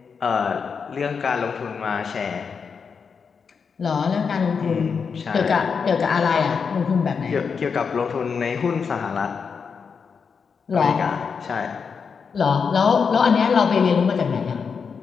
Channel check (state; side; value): quieter; right; 5.9 dB